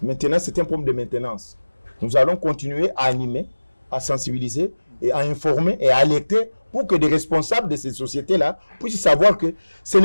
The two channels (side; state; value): both; inverted; correlation -1.00